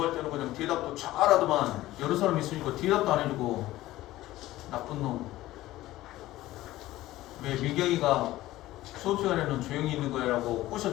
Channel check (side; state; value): right; quieter; 16.2 dB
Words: 때는 그냥 대답도 잘하더만 여러 사람 있으니까 대답도 안 해주고 나쁜 놈. 왜 미경이가 수업 시간에는 조용히 있는 거야라고